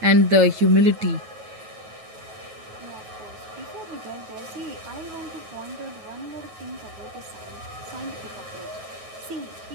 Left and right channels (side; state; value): left; late; 9.3 ms